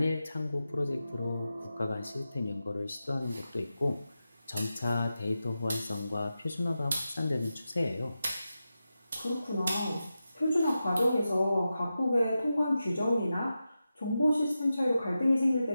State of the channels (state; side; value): inverted; both; correlation -0.91